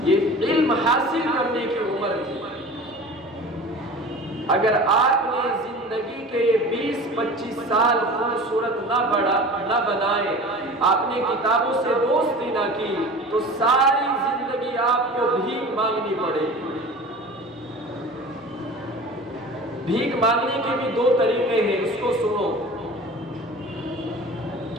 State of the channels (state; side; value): normal; both; correlation 0.38